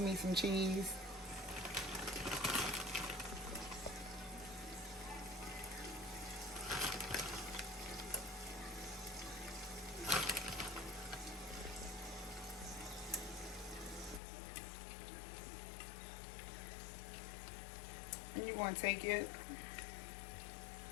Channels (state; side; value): drops out; right; at 14.2 s